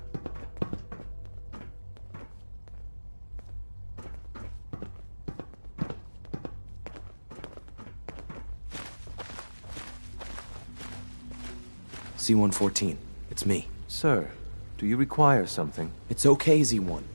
C-114, it's me. Sir, do you require something? It's okay, Z1.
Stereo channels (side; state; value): both; inverted; correlation -1.00